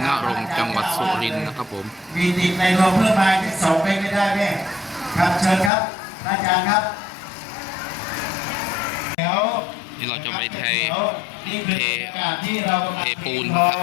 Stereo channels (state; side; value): drops out; right; at 5.7 s